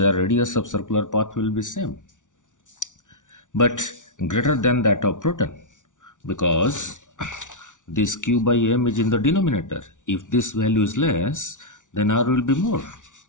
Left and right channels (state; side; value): late; right; 0.87 ms